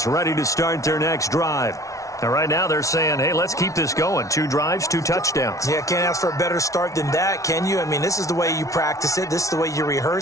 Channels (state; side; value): late; right; 0.16 ms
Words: ready to start their next drive. And right now they're saying, hey, let's keep this going. 2 drives, 2 touchdowns. Yeah, can't ask for a better start than that, can you? I mean, this is the way you practice it. This is the way you